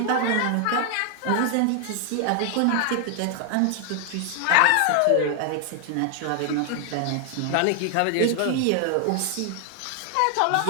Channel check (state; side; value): different; both; correlation 0.00